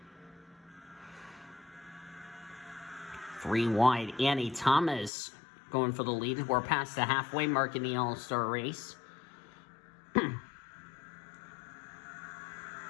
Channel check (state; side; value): drops out; right; at 5.1 s